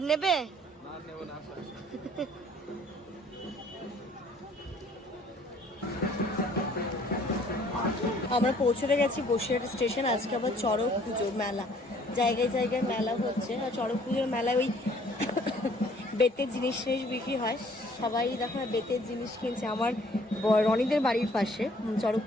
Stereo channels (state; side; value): normal; both; correlation 0.58